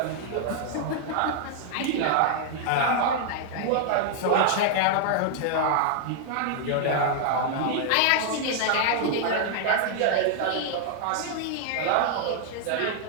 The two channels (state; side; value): different; both; correlation 0.00